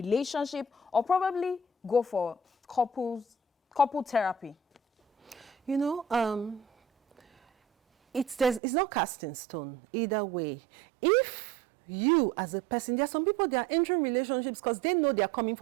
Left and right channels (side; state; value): left; drops out; at 8.6 s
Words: or probably go for couple therapy? You know, it's not cast in stone either way. If you as a person, there are some people, they are entering relationships because they know they are coming